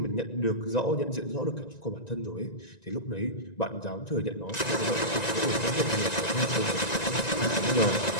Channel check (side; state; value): right; late; 1.9 ms